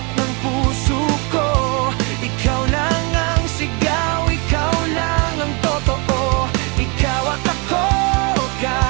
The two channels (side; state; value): left; quieter; 31.2 dB